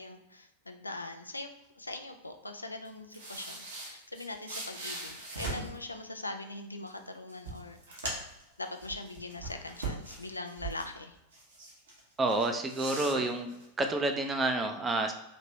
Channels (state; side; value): normal; both; correlation 0.28